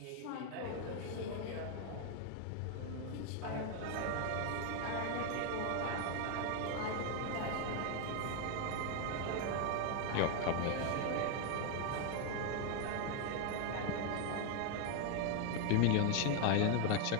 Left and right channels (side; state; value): both; different; correlation 0.01